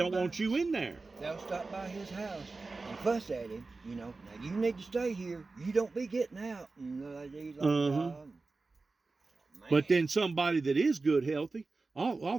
want you in there. They'll stop by his house and fuss at him, you know. Now, you need to stay here. You don't be getting out. And But then somebody that is good, healthy, all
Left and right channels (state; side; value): quieter; left; 3.7 dB